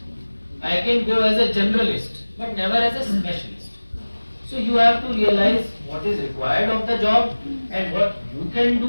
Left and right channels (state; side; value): inverted; both; correlation -1.00